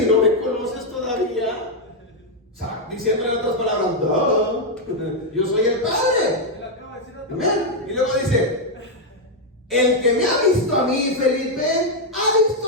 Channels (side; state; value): both; normal; correlation 0.00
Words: y no me conoces todavía. O sea, diciéndole en otras palabras, no, yo soy el Padre. Amén. Y luego dice, el que me ha visto a mí, Felipe, ha